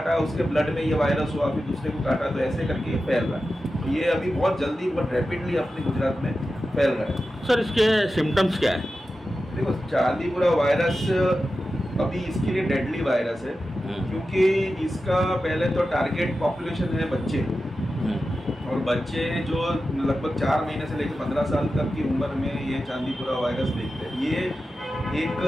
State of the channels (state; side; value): normal; both; correlation 0.92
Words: उसके ब्लड में ये वायरस हुआ, फिर दूसरे को काटा, तो ऐसे करके ये फैल रहा है। ये अभी बहुत जल्दी, बहुत रैपिडली अपने गुजरात में फैल रहा है। सर इसके सिम्टम्स क्या है? देखो, चांदीपुरा वायरस अभी इसके लिए डेडली वायरस है, क्योंकि इसका पहले तो टारगेट पॉपुलेशन है बच्चे, और बच्चे जो लगभग 4 महीने से लेकर 15 साल तक की उम्र में ये चांदीपुरा वायरस देखते हैं। ये